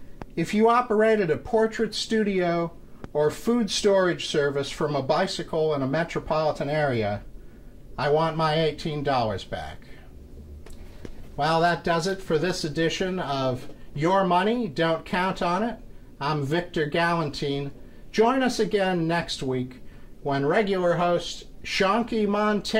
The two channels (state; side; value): identical; both; correlation 1.00